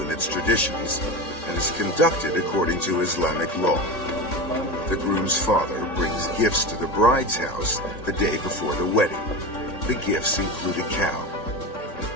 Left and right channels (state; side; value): late; right; 3.6 ms